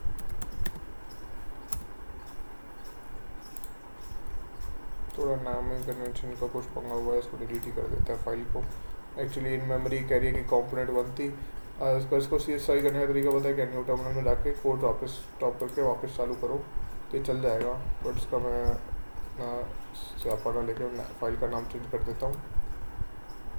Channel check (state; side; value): inverted; both; correlation -1.00